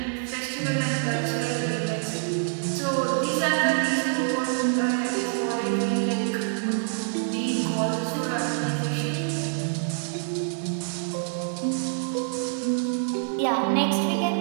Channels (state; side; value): silent; left; digital silence